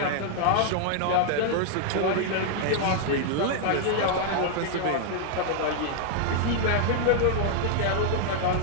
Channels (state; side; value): different; both; correlation 0.00